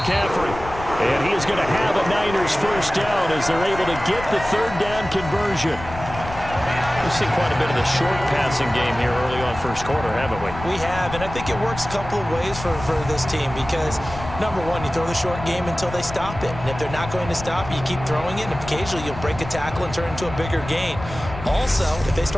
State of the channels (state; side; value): noise; left; rumble, 11 dB below the sound